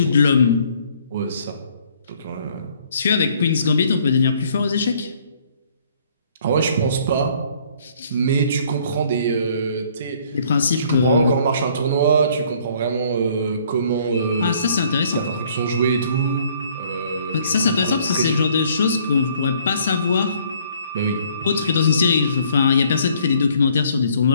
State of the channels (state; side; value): inverted; both; correlation -0.61